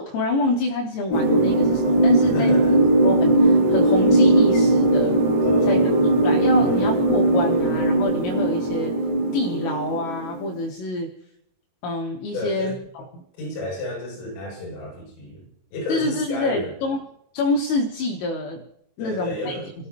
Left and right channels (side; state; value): right; late; 21 ms